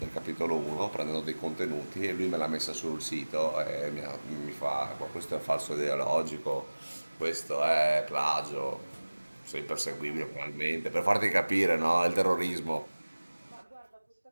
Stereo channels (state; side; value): inverted; both; correlation -1.00